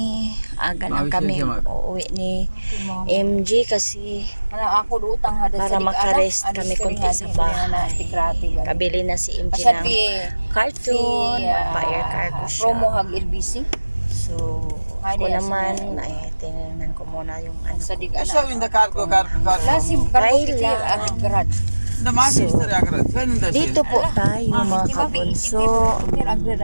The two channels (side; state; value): both; inverted; correlation -1.00